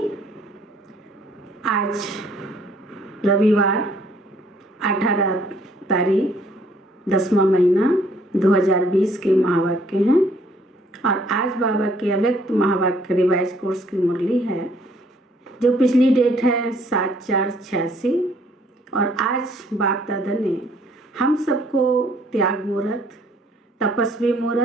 आज रविवार 18 तारीख 10वां महीना 2020 के महावाक्य हैं और आज बाबा के अव्यक्त महावाक्य रिवाइज कोर्स की मुरली है जो पिछली डेट है 7/4/86 और आज बाप दादा ने हम सबको त्याग मुहूर्त, तपस्वी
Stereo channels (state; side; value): normal; both; correlation 0.63